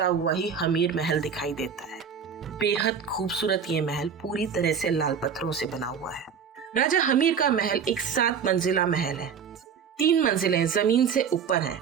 हुआ ही हमीर महल दिखाई देता है। बेहद खूबसूरत ये महल पूरी तरह से लाल पत्थरों से बना हुआ है। राजा हमीर का महल एक 7 मंजिला महल है। 3 मंजिलें जमीन से ऊपर हैं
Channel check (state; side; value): quieter; left; 6.9 dB